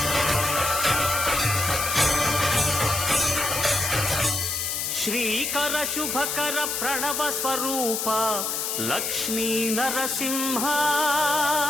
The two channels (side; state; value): left; noise; hiss, 1 dB below the sound